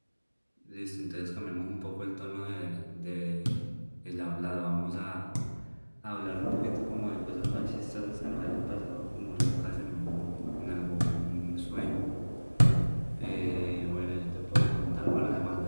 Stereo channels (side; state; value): both; inverted; correlation -1.00